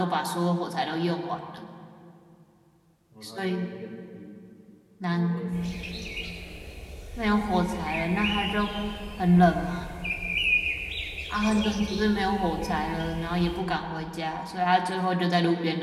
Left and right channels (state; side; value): identical; both; correlation 1.00